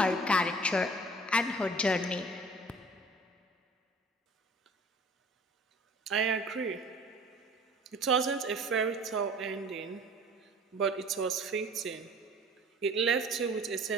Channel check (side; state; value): both; normal; correlation 0.48